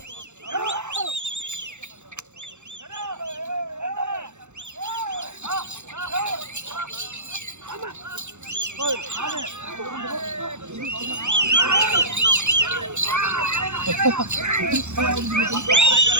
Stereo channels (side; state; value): left; late; 0.83 ms